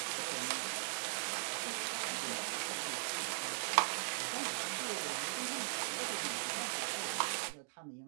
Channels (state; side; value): silent; left; digital silence